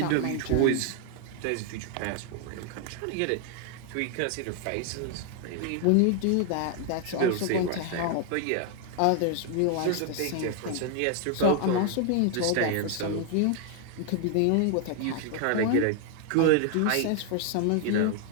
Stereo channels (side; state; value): both; different; correlation 0.00